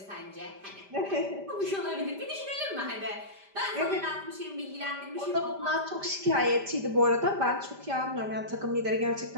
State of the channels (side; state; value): left; late; 5.1 ms